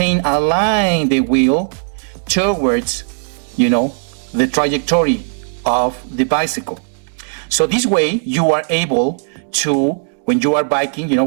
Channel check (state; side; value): silent; left; digital silence